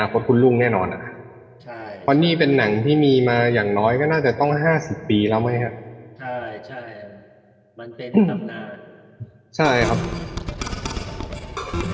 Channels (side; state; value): both; identical; correlation 1.00